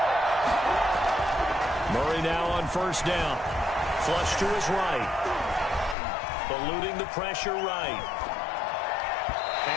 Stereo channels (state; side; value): drops out; right; at 6.0 s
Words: Murray now on first down. Flush to his right. Eluding the pressure right.